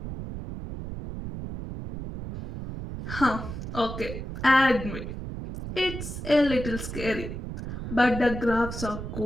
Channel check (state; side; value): noise; right; rumble, 7 dB below the sound